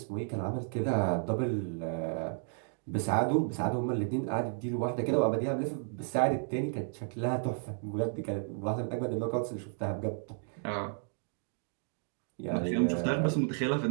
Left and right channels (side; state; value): left; silent; 56 dB below the other